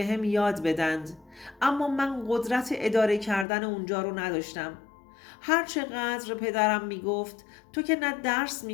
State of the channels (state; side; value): drops out; right; at 3.5 s